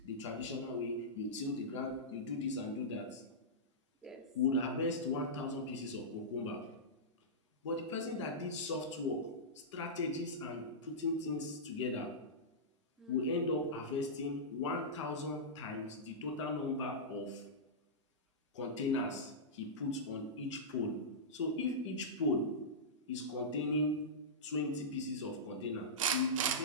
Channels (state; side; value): normal; both; correlation -0.14